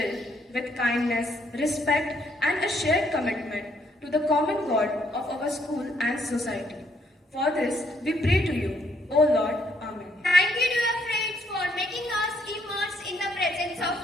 with kindness, respect, and a shared commitment to the common God of our school and society. For this, we pray to you, O Lord. Amen. Thank you, dear friends, for making us immerse in the presence of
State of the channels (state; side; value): normal; both; correlation 0.70